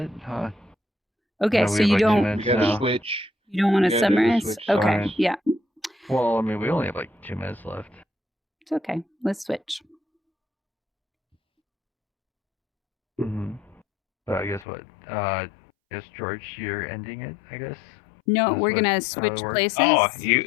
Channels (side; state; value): right; drops out; at 14.7 s